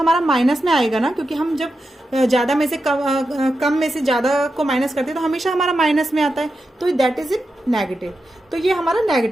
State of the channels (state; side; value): normal; both; correlation 0.89